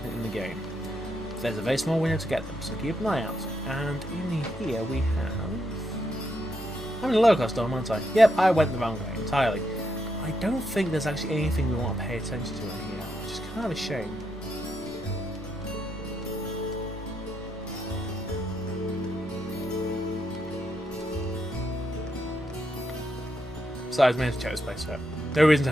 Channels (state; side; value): normal; both; correlation 0.80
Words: in the game. There's a very small window to get them, so keep an eye out. And in here we have... I'm in a lower class dorm, aren't I? Yep, I went the wrong way entirely. I don't think there's actually anything we want to pay attention to in here, which is kind of a shame. Besides, we have to check this place out. No reason to